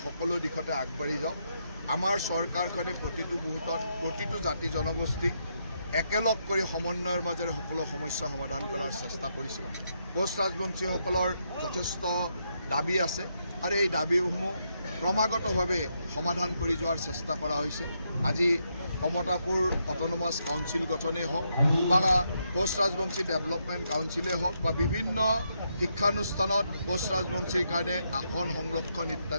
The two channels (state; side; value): inverted; both; correlation -0.79